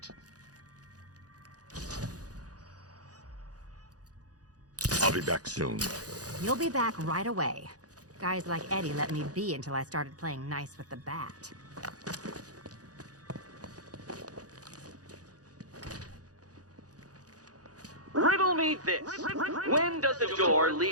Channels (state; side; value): late; left; 0.67 ms